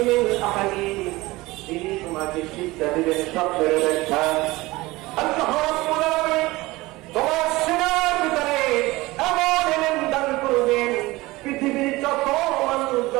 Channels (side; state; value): left; quieter; 20.4 dB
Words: তিনি তোমাকে শিক্ষা দিবেন স্বপ্নের ব্যাখ্যা। আল্লাহ রাব্বুল আলামিন তোমার সিনার ভিতরে এমন ইলম দান করবেন, পৃথিবীর যত মানুষ